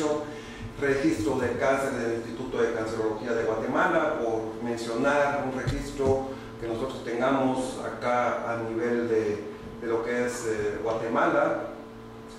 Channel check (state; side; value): identical; both; correlation 1.00